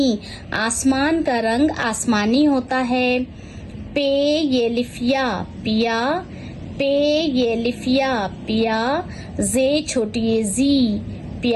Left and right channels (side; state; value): both; identical; correlation 1.00